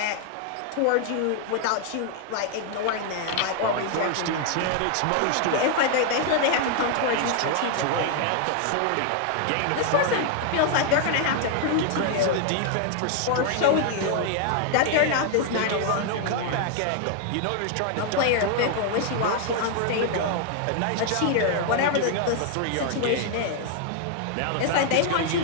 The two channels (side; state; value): both; different; correlation 0.00